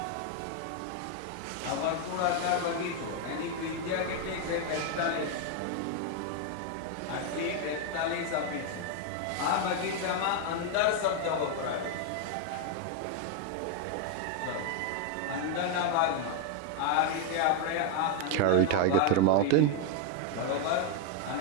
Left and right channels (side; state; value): both; different; correlation 0.01